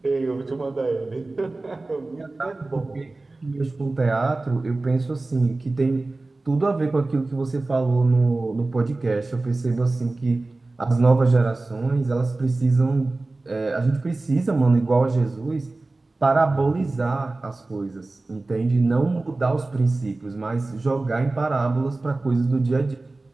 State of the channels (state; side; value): quieter; left; 3.2 dB